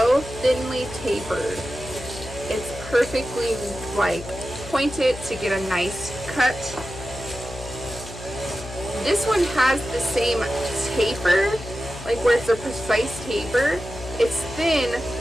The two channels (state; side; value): noise; left; hum, 13 dB below the sound